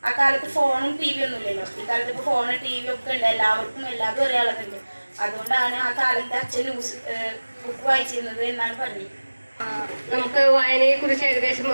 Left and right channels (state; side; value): inverted; both; correlation -1.00